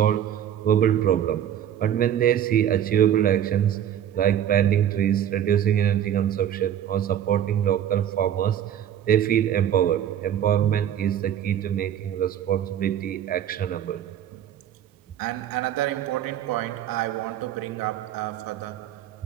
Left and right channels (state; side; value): quieter; left; 10.2 dB